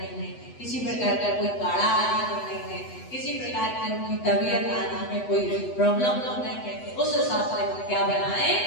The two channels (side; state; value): right; late; 8.1 ms